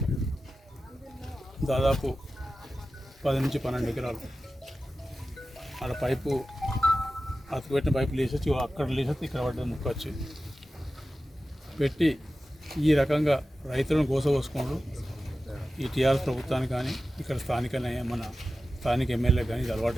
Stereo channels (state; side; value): normal; both; correlation 0.94